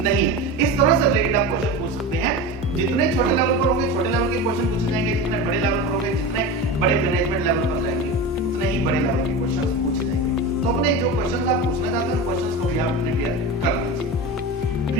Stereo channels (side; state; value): both; normal; correlation 0.26